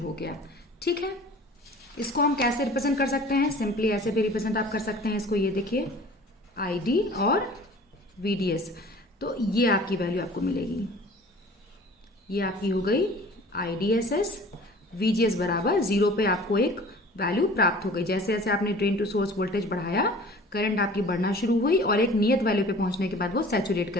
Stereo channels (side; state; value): both; normal; correlation 0.46